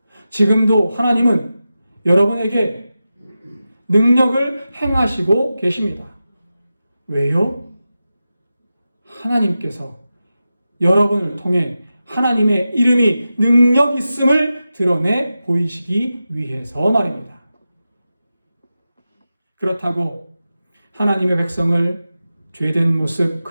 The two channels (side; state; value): both; inverted; correlation -0.92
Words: 지금도 하나님은 여러분에게 능력을 행하시고 계십니다. 왜요? 하나님께서 여러분을 통해 하나님의 이름이 능력 있음을 드러내 보이시기 위해서 말입니다. 그렇다고 하나님의 백성을 죄된 모습